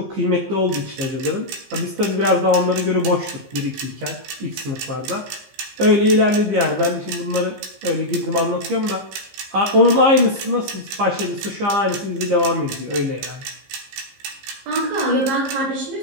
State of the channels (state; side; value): late; left; 15 ms